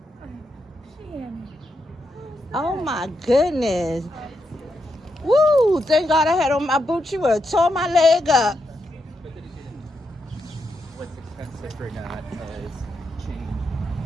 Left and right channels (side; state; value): both; normal; correlation 0.83